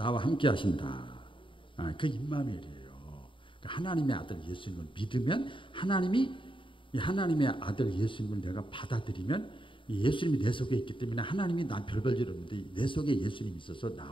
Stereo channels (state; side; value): late; right; 0.25 ms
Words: 함께 하신다. 그 임마누엘이에요. 하나님의 아들 예수님을 믿으면 하나님의 아들 예수님을 내가 받아들이면 예수님이 내 속에 있기 때문에 하나님이 난 별별 일 없는데 내 속에 예수님이 있어서